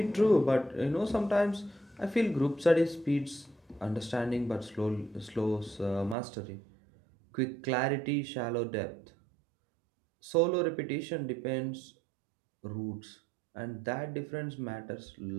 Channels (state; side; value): drops out; left; at 6.2 s